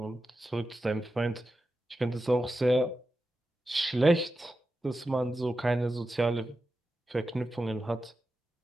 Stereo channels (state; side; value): normal; both; correlation 0.91